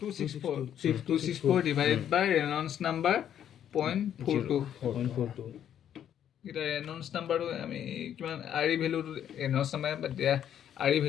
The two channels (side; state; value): right; quieter; 9.9 dB